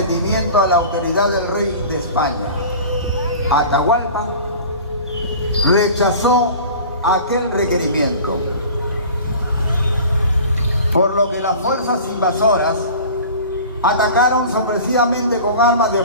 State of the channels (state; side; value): inverted; both; correlation -0.40